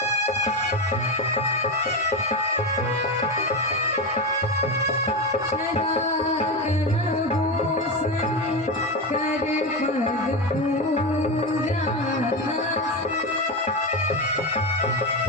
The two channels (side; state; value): both; normal; correlation 0.16